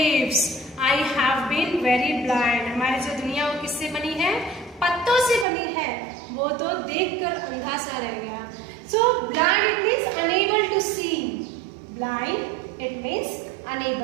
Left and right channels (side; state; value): left; drops out; at 5.5 s